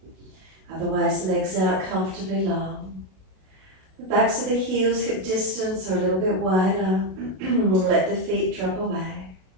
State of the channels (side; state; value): left; late; 32 ms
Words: Otherwise, legs out comfortably long. The backs of the heels, hip distance, are a little bit wider. Let the feet drop away.